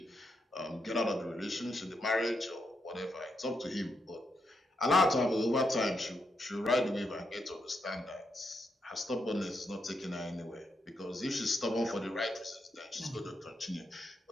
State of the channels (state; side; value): normal; both; correlation 0.82